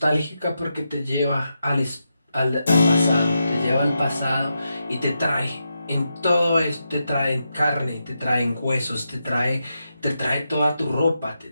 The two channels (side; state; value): both; inverted; correlation -0.86